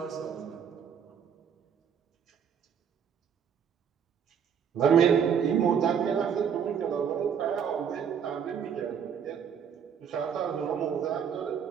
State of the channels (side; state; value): left; quieter; 7.7 dB